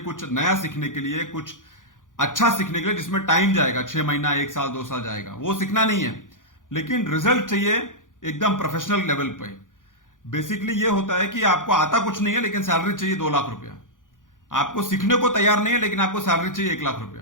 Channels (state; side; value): late; right; 0.88 ms